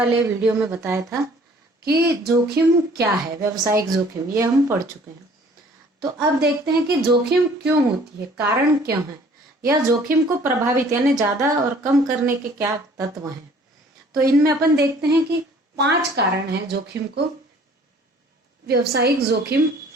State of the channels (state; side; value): normal; both; correlation 0.54